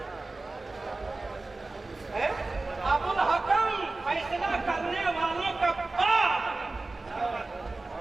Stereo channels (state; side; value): quieter; left; 3.3 dB